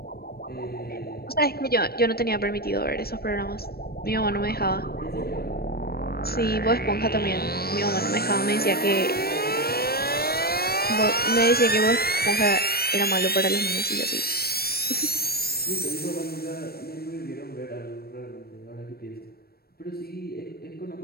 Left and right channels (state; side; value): late; right; 0.45 ms